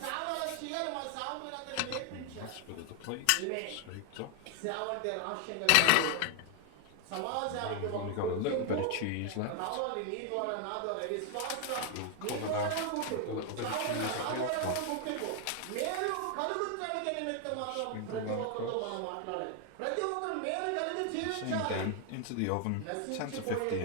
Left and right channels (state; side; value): different; both; correlation 0.00